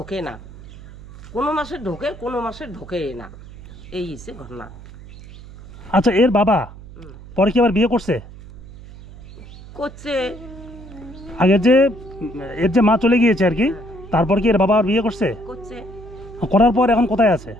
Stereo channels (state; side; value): noise; right; hum, 17 dB below the sound